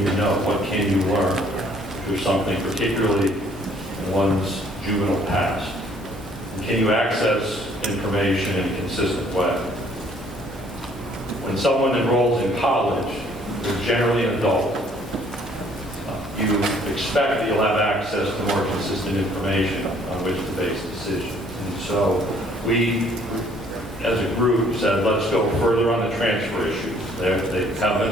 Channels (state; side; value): normal; both; correlation 0.61